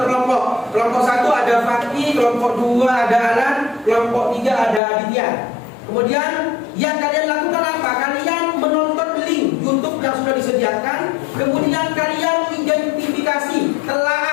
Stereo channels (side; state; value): right; drops out; at 4.8 s